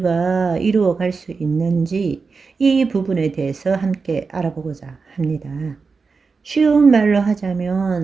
이루어 갈 수 있는지 이 부분에 대해서 함께 알아보고자 합니다. 쉬운 말로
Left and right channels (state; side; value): quieter; left; 4.7 dB